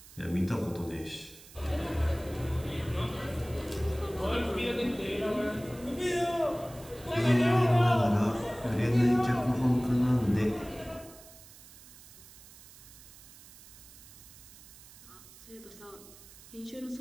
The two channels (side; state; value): right; noise; hiss, 20 dB below the sound